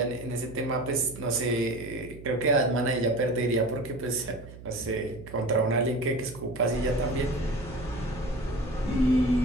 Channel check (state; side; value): noise; right; hum, 16 dB below the sound